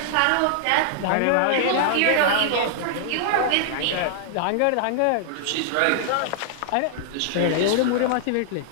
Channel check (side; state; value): both; different; correlation -0.01